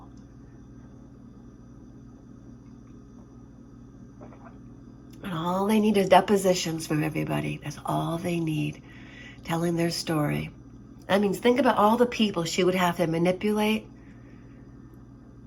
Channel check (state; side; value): identical; both; correlation 1.00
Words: And all they need is depositions from everybody. That's all they need, telling their story. That means think about all the people she would have to manipulate